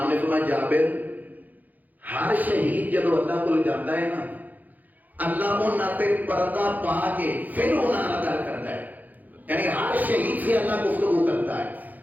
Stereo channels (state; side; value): late; left; 0.082 ms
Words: نے فرمایا جابر ہر شہید جب اللہ کو لے جاتا ہے نا، اللہ انہاں تے پردہ پا کے پھر انہاں نظر کرتا ہے، یعنی ہر شہید سے اللہ گفتگو کرتا ہے،